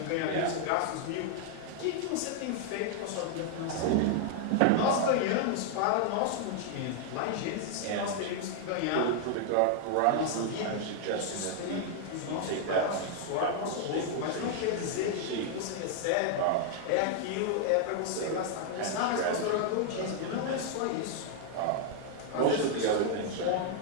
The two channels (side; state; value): both; different; correlation 0.00